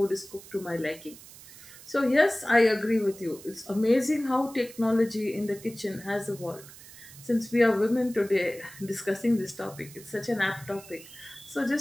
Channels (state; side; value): noise; right; hiss, 18 dB below the sound